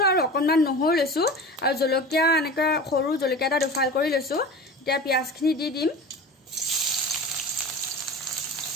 আৰু অকনমান নহৰু লৈছো আৰু জলকীয়া এনেকৈ সৰু জলকীয়া এটা দুফাল কৰি লৈছো এতিয়া পিঁয়াজখিনি দি দিম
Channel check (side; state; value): both; normal; correlation 0.34